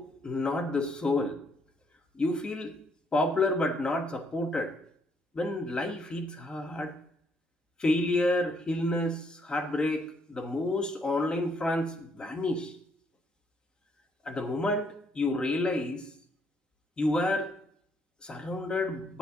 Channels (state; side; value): normal; both; correlation 0.71